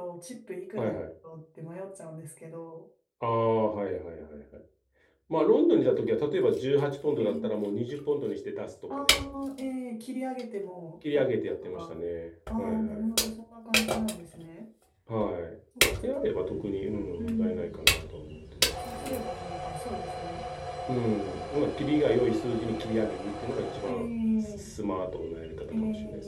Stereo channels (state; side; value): identical; both; correlation 1.00